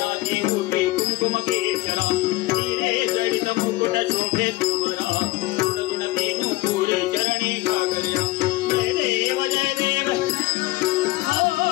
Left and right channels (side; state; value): right; quieter; 19.0 dB